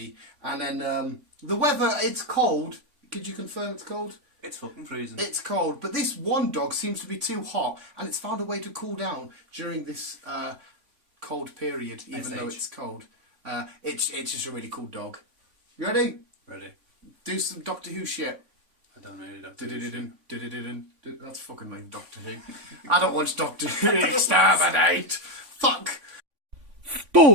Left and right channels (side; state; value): left; late; 3.5 ms